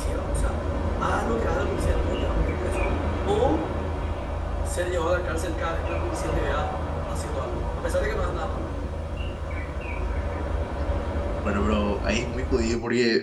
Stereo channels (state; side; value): identical; both; correlation 1.00